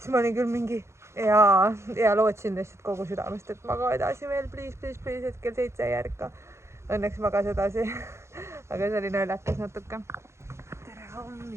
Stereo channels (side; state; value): left; late; 0.13 ms